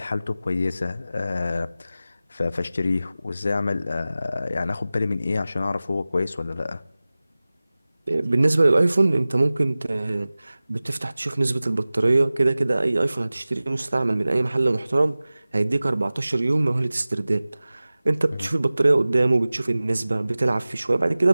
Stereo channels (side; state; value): both; inverted; correlation -0.97